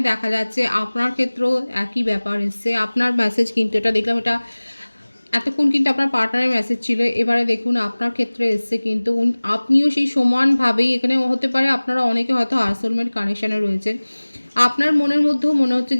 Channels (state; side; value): inverted; both; correlation -1.00